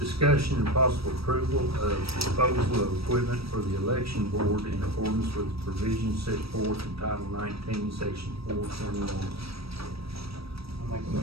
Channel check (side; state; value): left; late; 0.76 ms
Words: and possible approval of disposal of equipment for the election board in accordance with the provisions set forth in Title 19, Section 421. I'll make a